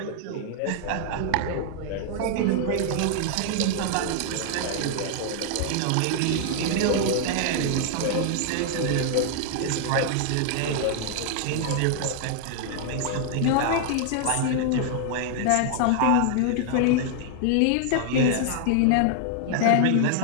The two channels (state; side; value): different; both; correlation 0.00